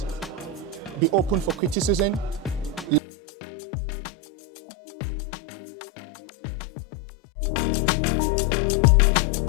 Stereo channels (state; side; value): drops out; right; at 3.0 s